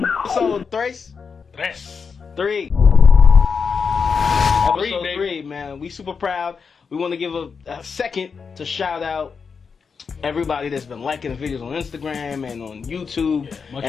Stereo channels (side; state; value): right; quieter; 5.7 dB